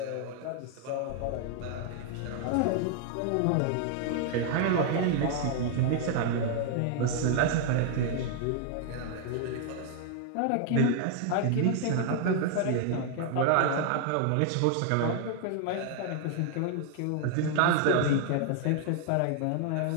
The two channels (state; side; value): different; both; correlation 0.00